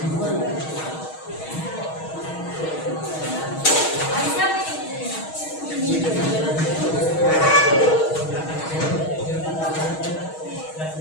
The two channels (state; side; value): late; right; 6.3 ms